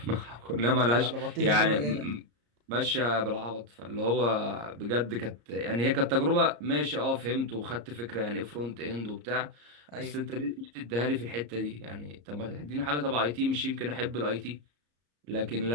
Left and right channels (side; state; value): left; late; 34 ms